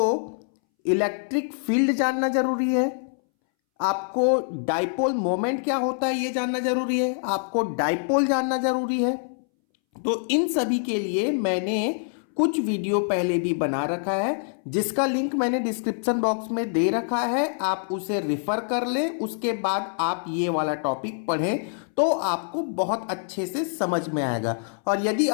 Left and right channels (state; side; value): silent; right; 62 dB below the other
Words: इलेक्ट्रिक फील्ड जानना जरूरी है, आपको डाइपोल मोमेंट क्या होता है ये जानना जरूरी है, आपको डाइपोल जानना जरूरी है। तो इन सभी के लिए मैंने कुछ वीडियो पहले भी बना रखा है, जिसका लिंक मैंने डिस्क्रिप्शन बॉक्स में दे रखा है। आप उसे रिफर कर लें, उसके बाद आप ये वाला टॉपिक पढ़ें तो आपको बहुत अच्छे से समझ में आएगा। और यदि